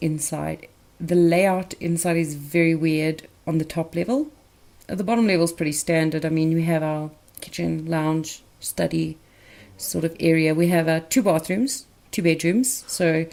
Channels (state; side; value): identical; both; correlation 1.00